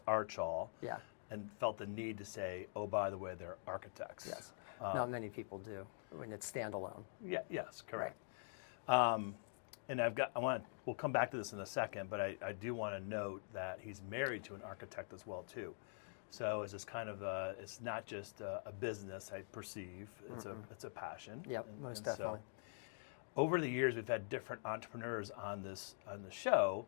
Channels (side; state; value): right; silent; digital silence